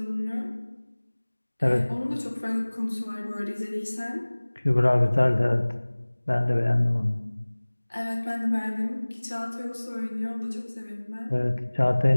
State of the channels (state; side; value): inverted; both; correlation -1.00